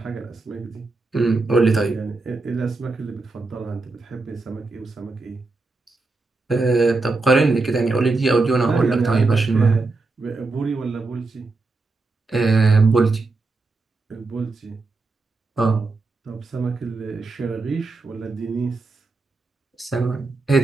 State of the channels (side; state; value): left; quieter; 3.6 dB